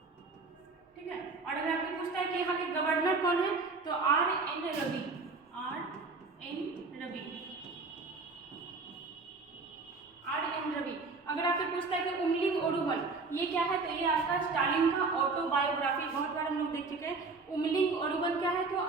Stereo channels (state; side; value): quieter; left; 4.0 dB